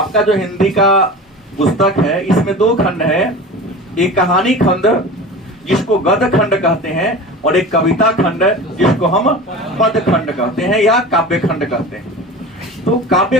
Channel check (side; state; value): both; normal; correlation 0.33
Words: जो हिंदी का पुस्तक है इसमें 2 खंड है, एक कहानी खंड जिसको गद्य खंड कहते हैं और एक कविता खंड जिसको हम पद खंड कहते हैं या काव्य खंड कहते हैं। तो काव्य